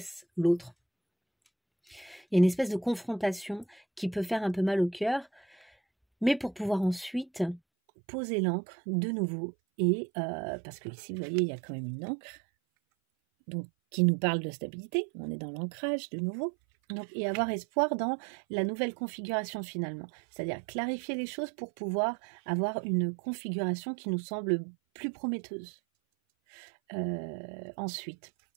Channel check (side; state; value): left; drops out; at 7.6 s